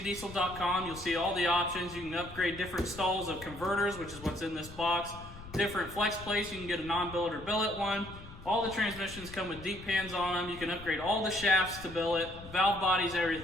you'll see all the options. You can upgrade different stalls of converters, which is what's in this box. Different flex plates, you can get a non-billet or billet one. All the transmissions come with deep pans on them. You can upgrade all the shafts to billet, valve bodies,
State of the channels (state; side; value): noise; left; rumble, 16 dB below the sound